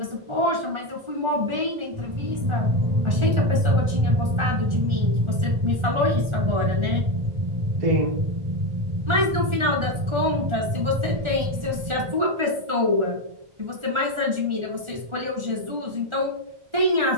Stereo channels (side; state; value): left; late; 1.4 ms